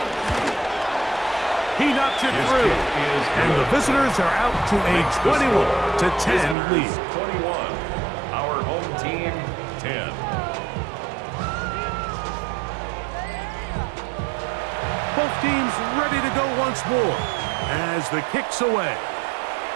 He knocks it through. And the visitors are out to a 21-10 lead. 21. Our home team, 10. Both teams ready to go once more as the kick's away.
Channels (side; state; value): left; drops out; at 6.6 s